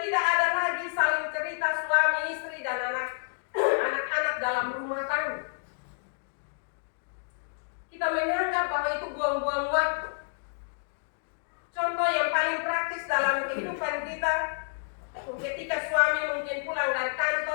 ada lagi saling cerita suami istri dan anak-anak dalam rumah tangga. Kita menganggap bahwa itu buang-buang waktu. Contoh yang paling praktis dalam kehidupan kita, ketika suami mungkin pulang dari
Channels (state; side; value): silent; right; digital silence